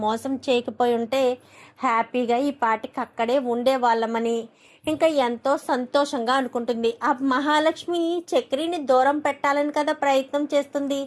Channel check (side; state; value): both; identical; correlation 1.00